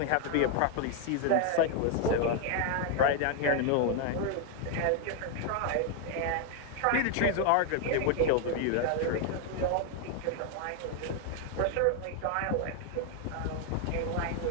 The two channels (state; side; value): different; both; correlation 0.00